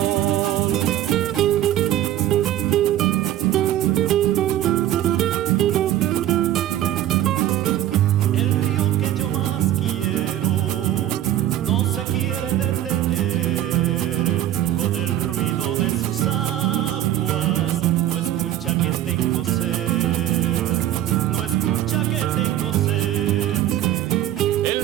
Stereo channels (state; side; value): quieter; left; 12.5 dB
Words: El río que yo más quiero no se quiere detener, con el ruido de sus aguas no escucha que tengo sed, no escucha que tengo sed.